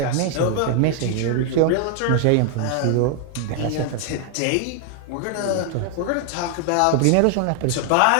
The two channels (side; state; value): both; different; correlation 0.00